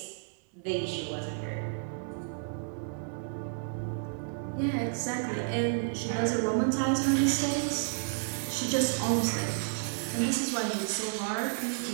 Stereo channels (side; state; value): left; silent; 57 dB below the other